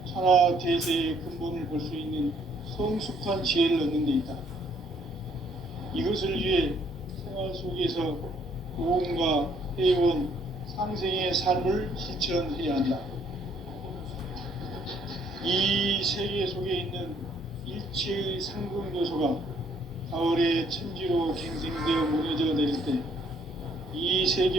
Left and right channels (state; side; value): normal; both; correlation 0.65